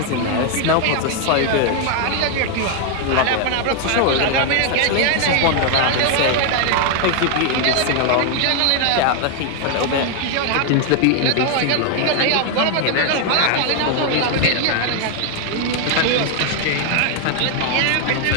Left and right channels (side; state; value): both; different; correlation 0.00